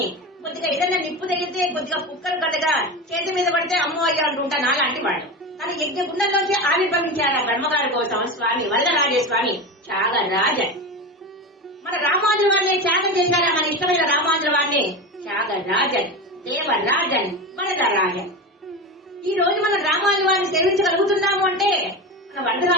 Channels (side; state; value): both; normal; correlation 0.23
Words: కొద్దిగా ఏదైనా నిప్పు తగిలితే కొద్దిగా కుక్కలు కదగా చేతి మీద పడితే అమ్మో అయ్యా అంటుంటా నాలాంటి వాడు. కానీ యజ్ఞ గుండంలోంచి ఆవిర్భవించారా బ్రహ్మగారి కోసం స్వామి వరదరాజస్వామి త్యాగరాజన్. మన రామానుజుల వారిని త్యాగం చేశారా మన ఇష్టమైన రామానుజుల వారిని? త్యాగరాజన్, దేవరాజన్, వరదరాజన్. ఈ రోజు మన రామానుజుల వారిని సేవించగలుగుతున్నాము అంటే మన